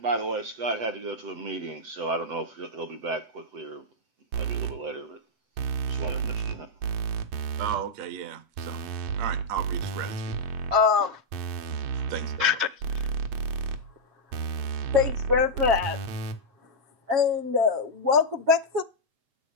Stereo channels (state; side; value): late; left; 7.4 ms